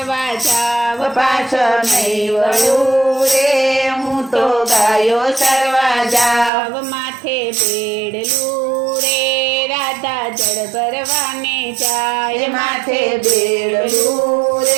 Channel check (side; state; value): left; drops out; at 6.5 s